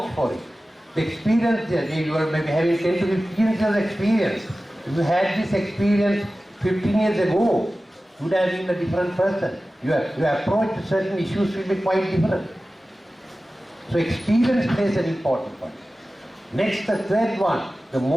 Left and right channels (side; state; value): both; normal; correlation 0.96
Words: for it. The experience, you are maybe having 10 to 15 years of experience. If you had this experience 15 years ago, you would have been a different person. Your approach to certain issues will be quite different. So experience plays an important one. Next, the third one, the